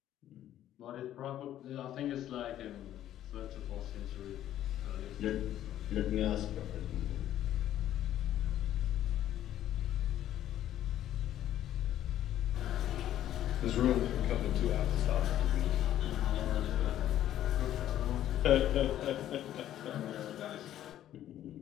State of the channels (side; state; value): right; quieter; 12.1 dB